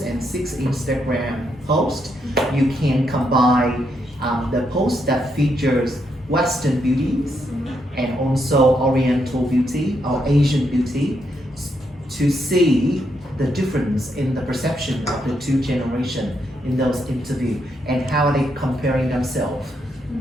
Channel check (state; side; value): normal; both; correlation 0.78